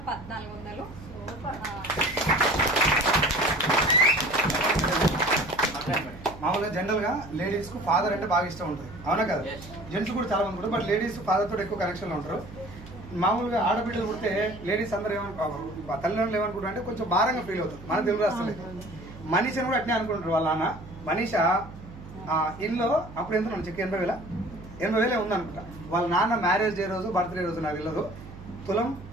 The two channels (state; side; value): noise; right; hum, 16 dB below the sound